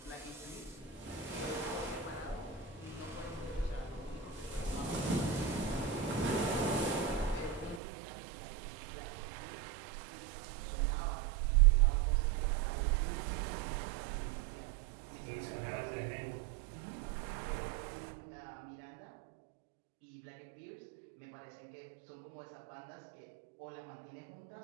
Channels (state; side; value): drops out; left; at 7.8 s